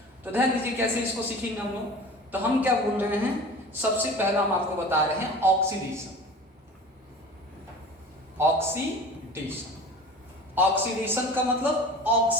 तो ध्यान दीजिए कैसे इसको सीखेंगे हम लोग। तो हम क्या बोल रहे हैं, सबसे पहला हम आपको बता रहे हैं ऑक्सीडेशन। ऑक्सीडेशन, ऑक्सीडेशन का मतलब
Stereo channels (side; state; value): both; normal; correlation 0.38